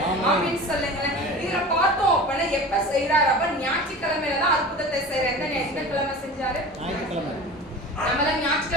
ஆமென் சொல்லுங்களேன். இதுல பார்த்தோம் அப்படின்னா எப்ப செய்யறாரு? அப்ப ஞாயிற்றுக்கிழமையில தான் அற்புதத்தை செய்யறாரு. எந்த கிழமை செஞ்சாரு? நம்மளாம்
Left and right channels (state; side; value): normal; both; correlation 0.36